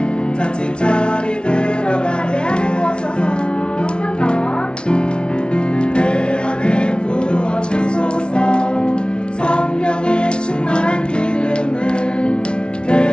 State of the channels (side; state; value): right; late; 0.056 ms